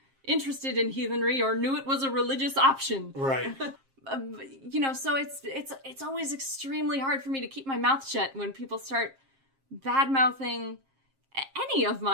interested in heathenry or knew it was a religious option. Right. So it's always extremely hard for me to keep my mouth shut when people start bad-mouthing any of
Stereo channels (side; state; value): left; late; 7.5 ms